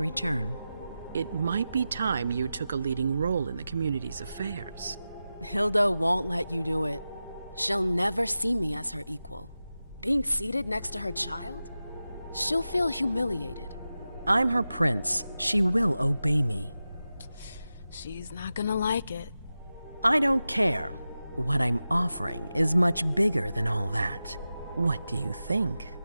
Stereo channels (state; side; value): inverted; both; correlation -0.93